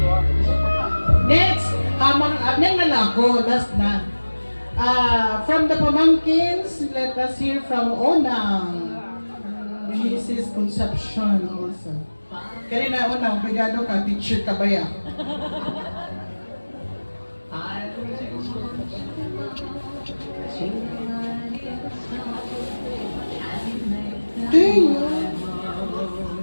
Next, nang nalako, last na. From the pamangkins, let us hear from Onang. Mrs. Concepcion also. Kanina Onang, brigado ka, teacher ka ba ya?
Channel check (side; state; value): both; inverted; correlation -1.00